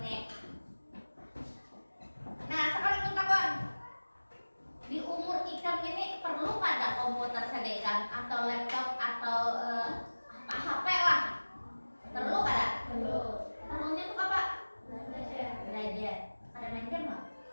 nih. Nah, sekarang kita kawan, di umur ikam ini perlu pada komputer sedekah atau laptop atau HP lah. Perlu kada? Perlu. Perlunya tuh apa? Belajar. Ada main game nggak?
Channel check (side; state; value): both; inverted; correlation -1.00